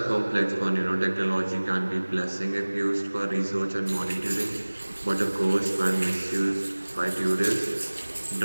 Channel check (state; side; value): inverted; both; correlation -1.00